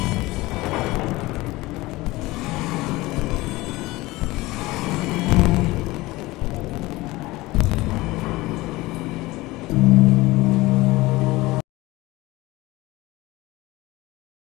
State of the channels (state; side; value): quieter; right; 20.1 dB